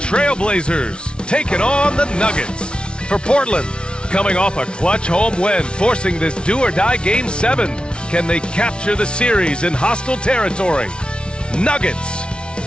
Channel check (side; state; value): right; late; 0.057 ms